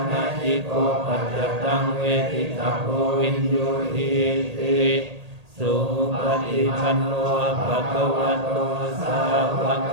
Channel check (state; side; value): late; left; 1.8 ms